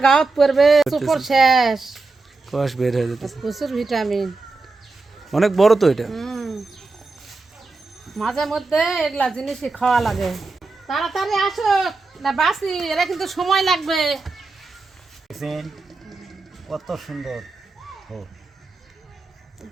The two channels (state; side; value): quieter; left; 3.7 dB